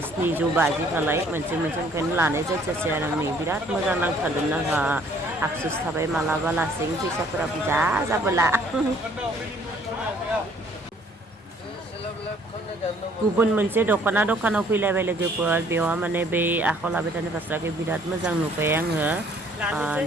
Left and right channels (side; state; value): both; normal; correlation 0.60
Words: 750 खालाय मोनसे ओंखायनो लानाय जायासै आरो आंनि बिराद मोजां नांथारदोंमोन आंहा आफसुस थाबाय मालाबा लासें फैसाफोरा बुरजा जाबोला गुबुन मोनसे दखानाव फैलायबाय लोगोफोर बेयाव माने बै आखायाव लाबाय थानाय फास्राखौ बिराद मोजां नुबाय आङो